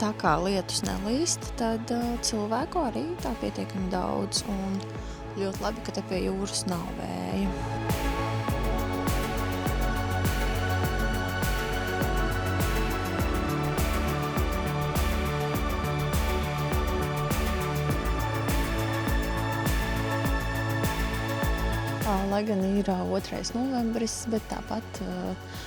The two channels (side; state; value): both; identical; correlation 1.00